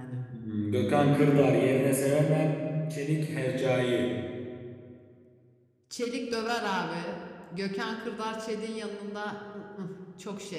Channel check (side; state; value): both; identical; correlation 1.00